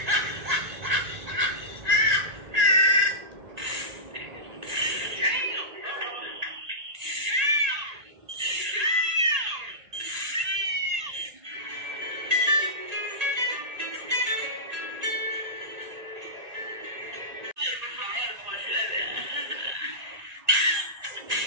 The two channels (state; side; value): late; left; 1.9 ms